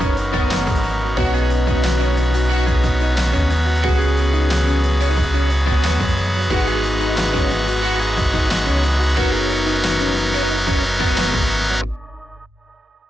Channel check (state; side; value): normal; both; correlation 0.89